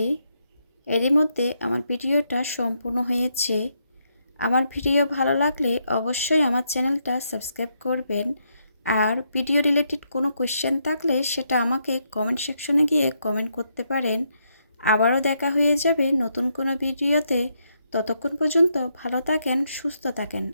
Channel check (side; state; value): both; inverted; correlation -0.79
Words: এরই মধ্যে আমার ভিডিওটা সম্পূর্ণ হয়েছে। আমার ভিডিও ভালো লাগলে অবশ্যই আমার চ্যানেলটা সাবস্ক্রাইব করবেন। আর ভিডিও রিলেটেড কোনো কোয়েশ্চেন থাকলে সেটা আমাকে কমেন্ট সেকশনে গিয়ে কমেন্ট করতে পারেন। আবারও দেখা হয়ে যাবে নতুন কোনো ভিডিওতে। ততক্ষণ পর্যন্ত ভালো থাকেন, সুস্থ থাকেন।